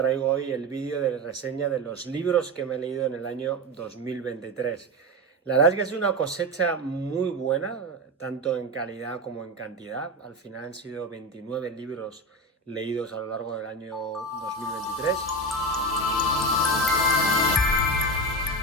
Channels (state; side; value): normal; both; correlation 0.20